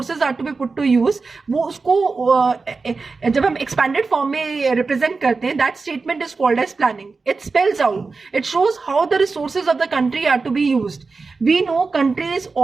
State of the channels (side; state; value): left; quieter; 4.3 dB